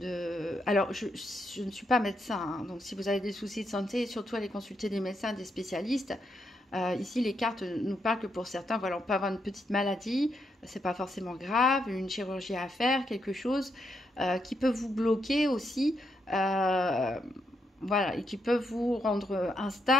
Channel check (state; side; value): normal; both; correlation 0.80